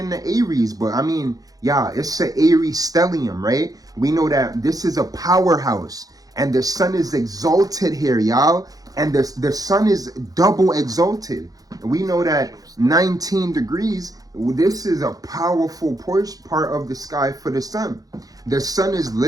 the Aries, but I mean, yeah, it's an Aries stellium, right? We know that this is a powerhouse, and the sun is exalted here, y'all. And the sun is double exalted. We know that 19 degrees, this is a powerful part of the sky for the sun. The sun is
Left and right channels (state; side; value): late; left; 0.18 ms